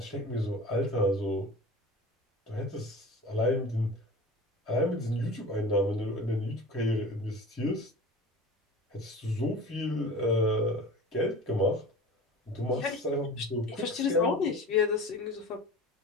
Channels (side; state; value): both; normal; correlation 0.37